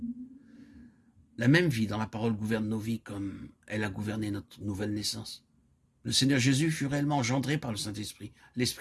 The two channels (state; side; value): identical; both; correlation 1.00